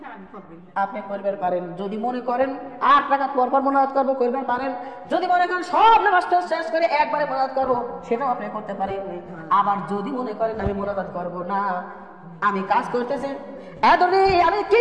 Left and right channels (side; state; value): both; identical; correlation 1.00